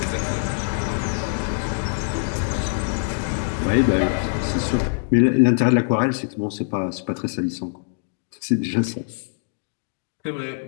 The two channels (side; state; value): right; silent; digital silence